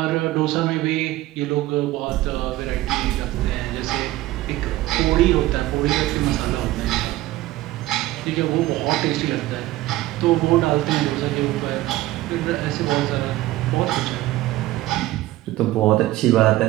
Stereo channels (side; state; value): left; quieter; 16.8 dB